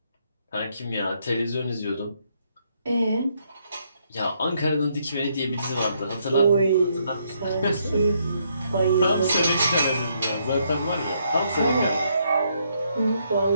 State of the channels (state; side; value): inverted; both; correlation -0.73